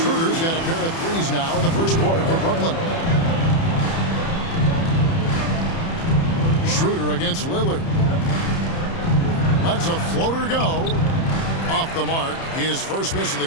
Schroeder's got a pair of threes now in the first quarter for Brooklyn. Schroeder against Lillard. Lets a floater go. Off the mark. His first miss of the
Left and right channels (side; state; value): right; late; 30 ms